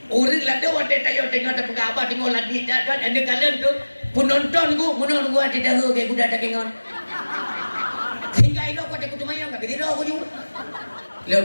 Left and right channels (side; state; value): both; inverted; correlation -1.00